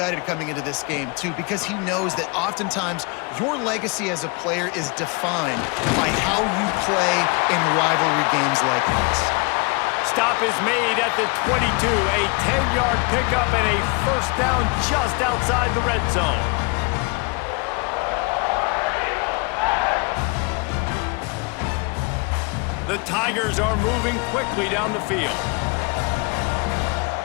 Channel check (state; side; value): quieter; right; 30.0 dB